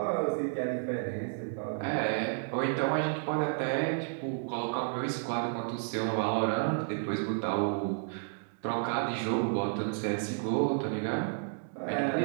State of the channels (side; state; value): left; silent; digital silence